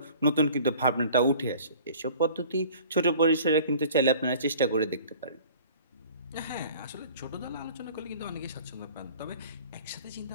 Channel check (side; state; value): both; inverted; correlation -0.48